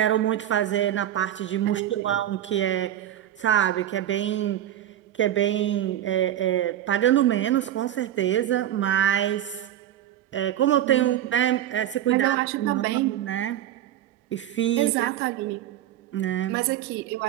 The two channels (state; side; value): quieter; left; 11.9 dB